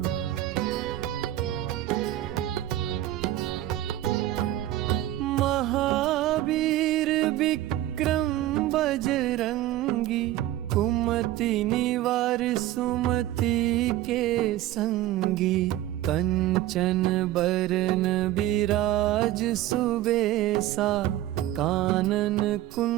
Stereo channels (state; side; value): quieter; left; 14.5 dB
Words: महावीर विक्रम बजरंगी, कुमति निवार सुमति के संगी। कंचन बरन बिराज सुबेसा, कानन